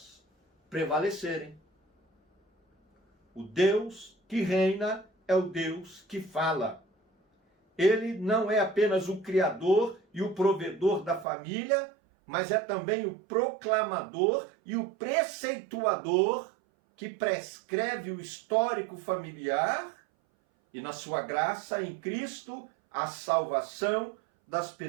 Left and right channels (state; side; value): drops out; left; at 11.2 s